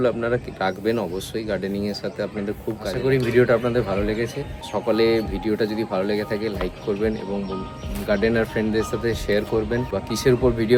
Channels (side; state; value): both; identical; correlation 1.00